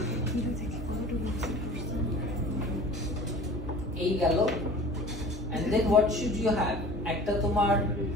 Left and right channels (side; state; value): both; normal; correlation 0.42